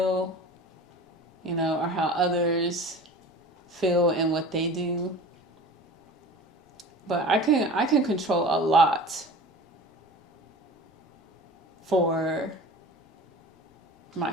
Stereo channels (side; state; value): both; normal; correlation 0.38